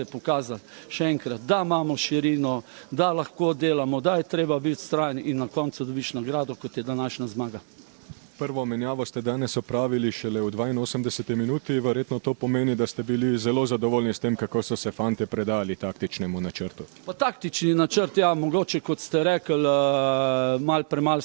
je pokazal še enkrat, da imamo širino, da lahko delamo, da je treba biti vztrajen in na koncu dobiš nagrado, kot je današnja zmaga. Prvo menjavo ste danes opravili šele v 82. minuti, verjetno to pomeni, da ste bili zelo zadovoljni s tem, kako so se fante predali taktičnemu načrtu. Pa taktični načrt, ja, mogoče, kot ste rekli, premalo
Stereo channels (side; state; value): left; silent; 61 dB below the other